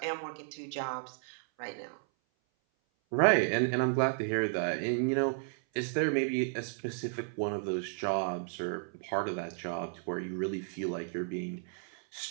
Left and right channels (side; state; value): left; silent; 56 dB below the other